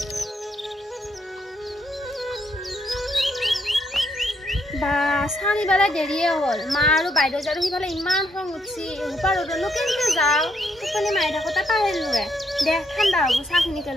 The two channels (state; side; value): normal; both; correlation 0.74